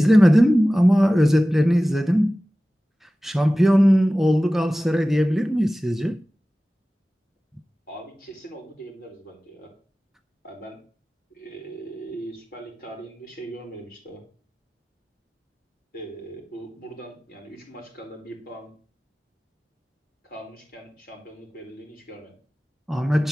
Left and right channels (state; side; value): normal; both; correlation 0.97